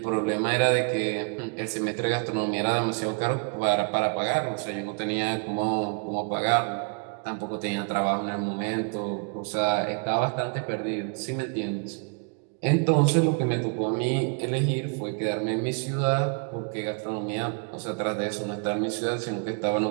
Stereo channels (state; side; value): quieter; left; 38.4 dB